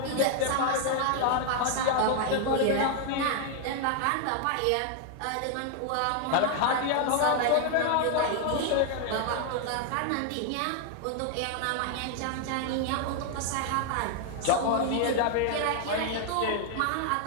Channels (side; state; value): both; different; correlation 0.00